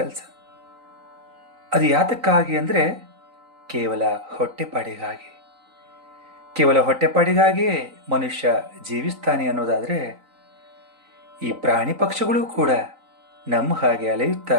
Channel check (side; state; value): left; late; 3.9 ms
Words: ಅದು ಯಾತಕ್ಕಾಗಿ ಅಂದರೆ ಕೇವಲ ಹೊಟ್ಟೆಪಾಡಿಗಾಗಿ. ಕೇವಲ ಹೊಟ್ಟೆಪಾಡಿಗಾಗಿಯೇ ಮನುಷ್ಯ ಜೀವಿಸ್ತಾನೆ ಅನ್ನೋದಾದರೆ, ಈ ಪ್ರಾಣಿ ಪಕ್ಷಿಗಳು ಕೂಡ ನಮ್ಮ ಹಾಗೆ ಅಲೆಯುತ್ತಾ